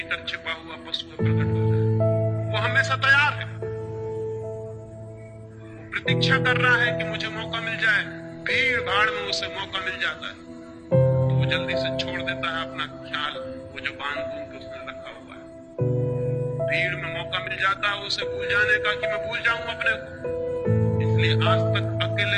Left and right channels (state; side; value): identical; both; correlation 1.00